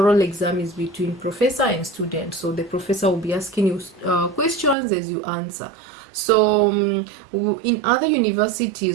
exam is between professor and student, so the professor will be asking you questions as you answer. So in other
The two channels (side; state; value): left; drops out; at 4.8 s